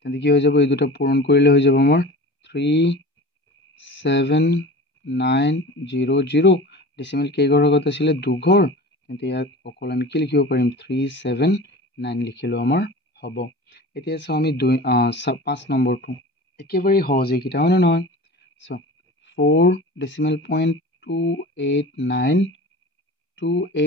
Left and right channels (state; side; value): normal; both; correlation 0.36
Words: কি হৈ যাব এই দুটা পূৰণ কৰিলে হৈ যাব আমাৰ 37900 ডেচিমেল কেইঘৰ আগত আছিলে দুঘৰ তেন্তে ইয়াত অকল আমি কি লিখিব পাৰিম 379 লিখিলেও আমাৰ হ'ব এতিয়া চাওঁ আমি 5 নম্বৰটো একেবাৰে সহজ এইকেইটা হয়নে নহয় চোৱা